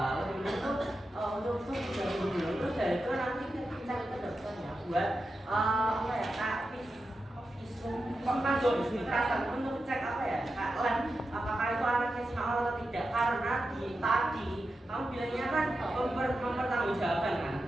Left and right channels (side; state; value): both; normal; correlation 0.90